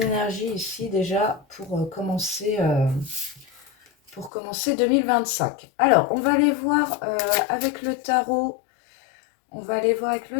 énergies ici déjà pour commencer 2025. Alors on va aller voir avec le tarot,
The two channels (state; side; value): drops out; right; at 4.3 s